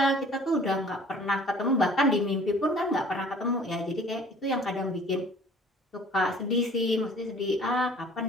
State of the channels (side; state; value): both; normal; correlation 0.51